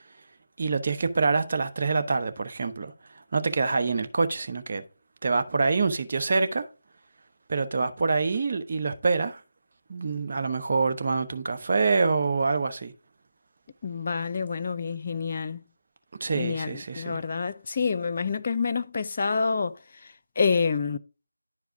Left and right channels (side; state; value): both; inverted; correlation -0.85